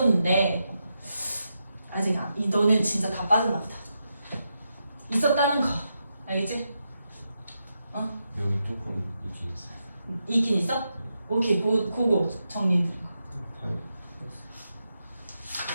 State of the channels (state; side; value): inverted; both; correlation -0.86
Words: 아직 너는 진짜 다 빠졌나 보다. 있었다는 거 알겠지? 여기 조금 있긴 있어요. 있긴 있어? 오케이, 그거 정리해드려.